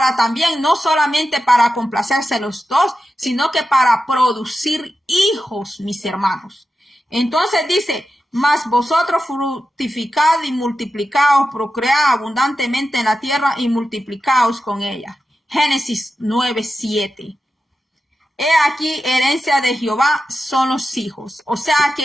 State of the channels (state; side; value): normal; both; correlation 0.91